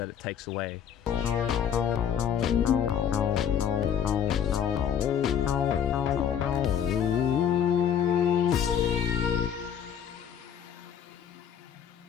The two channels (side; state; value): right; quieter; 8.7 dB